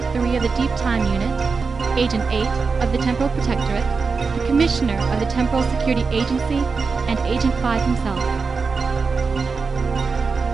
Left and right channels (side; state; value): left; quieter; 4.8 dB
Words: 3 of the Deep Time Unit, Agent 8 of the Temporal Protectorate, the Commissioner of the Temporal Security Agency, and Agent 5 himself.